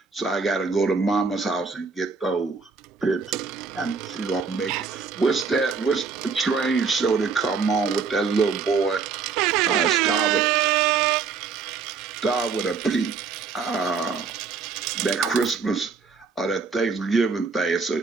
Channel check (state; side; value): quieter; left; 5.2 dB